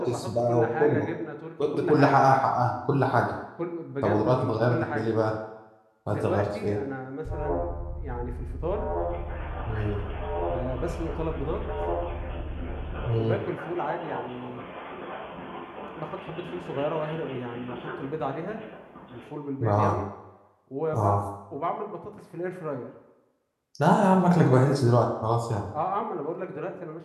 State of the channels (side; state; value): both; identical; correlation 1.00